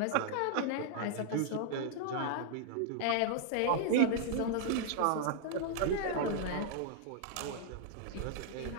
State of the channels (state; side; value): different; both; correlation -0.01